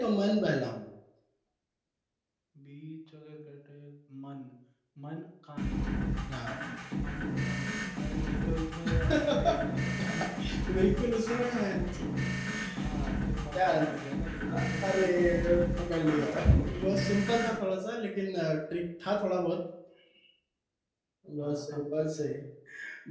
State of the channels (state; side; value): identical; both; correlation 1.00